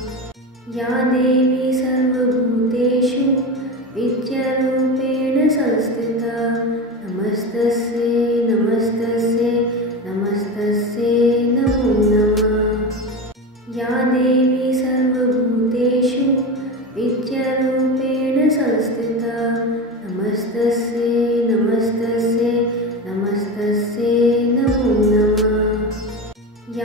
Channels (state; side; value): normal; both; correlation 0.23